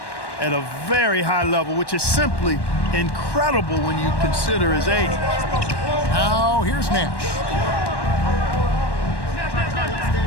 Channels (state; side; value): late; right; 1.1 ms